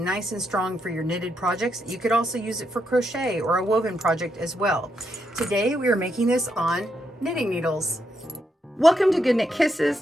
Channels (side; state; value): both; normal; correlation 0.80